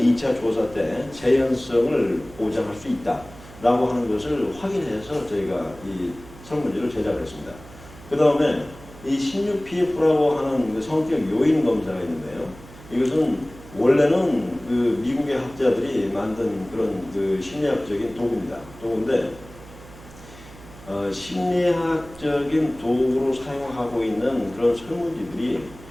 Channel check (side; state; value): right; noise; hum, 19 dB below the sound